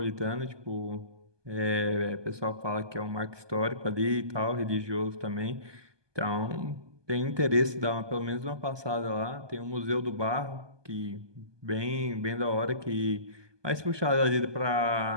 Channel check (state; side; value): late; left; 1.2 ms